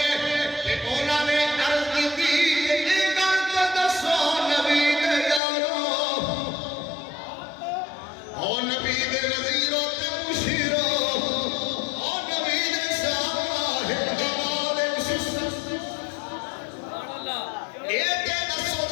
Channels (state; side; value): drops out; right; at 5.4 s